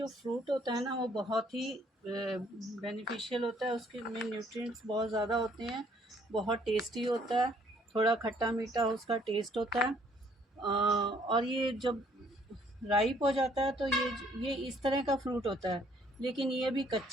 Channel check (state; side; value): normal; both; correlation 0.63